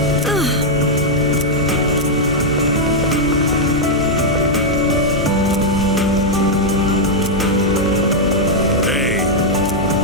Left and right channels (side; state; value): both; normal; correlation -0.04